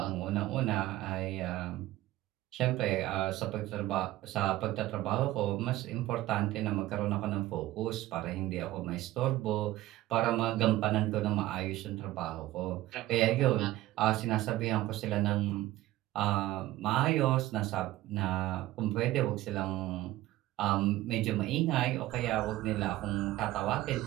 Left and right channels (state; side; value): quieter; left; 16.1 dB